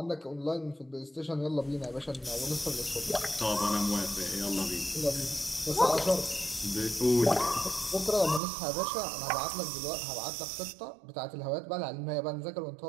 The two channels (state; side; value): drops out; left; at 8.4 s